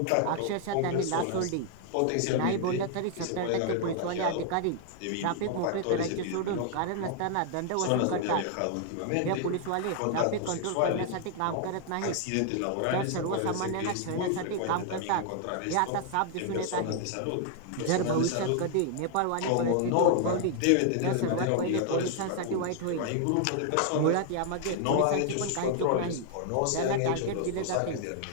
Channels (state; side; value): different; both; correlation 0.00